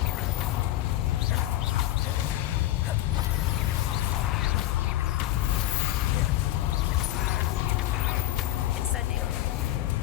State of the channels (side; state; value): right; quieter; 14.4 dB